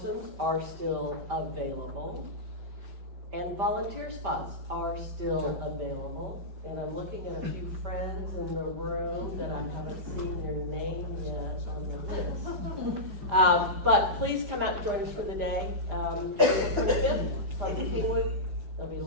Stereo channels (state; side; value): late; left; 5.1 ms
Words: are still available, and volunteer spots are still available. And I'm looking at a few friends in the room that I haven't seen your name yet on the list. But please come out and join us for the day. April 25th from Kingwood. There'll be